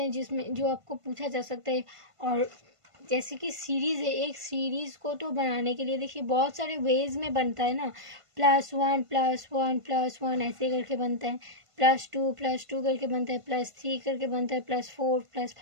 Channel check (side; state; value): left; late; 1.5 ms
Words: जिसमें जो आपको पूछा जा सकता है। और जैसे कि सीरीज़ है, एक सीरीज़ को तो बनाने के लिए देखिए बहुत सारे वेज में बनता है ना, +1 ऐसे करके बनता है, +2 करके बनता है, +3 करके बनता है, +4